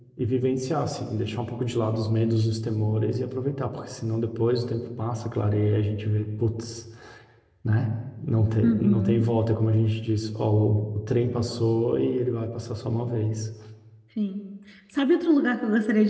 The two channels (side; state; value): both; identical; correlation 1.00